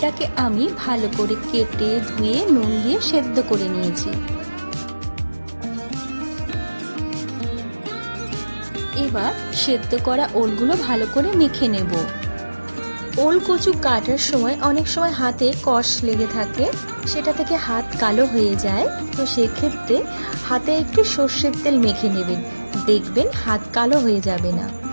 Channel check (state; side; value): inverted; both; correlation -1.00